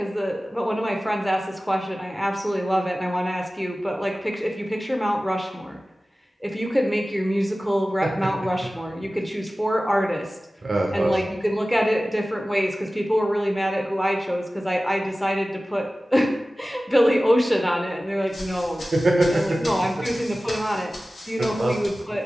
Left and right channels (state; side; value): normal; both; correlation 0.96